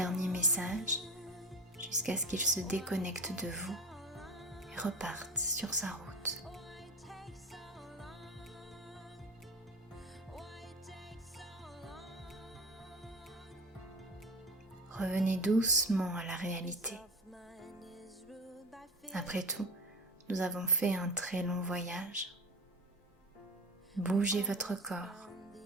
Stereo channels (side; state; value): both; normal; correlation 0.28